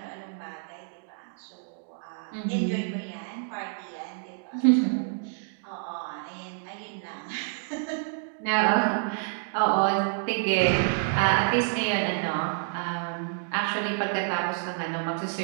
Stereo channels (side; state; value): left; silent; digital silence